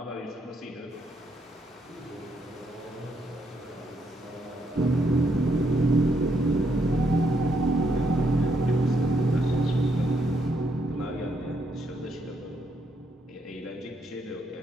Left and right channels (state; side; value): normal; both; correlation 0.75